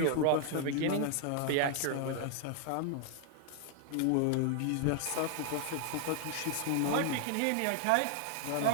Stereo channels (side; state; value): both; different; correlation 0.00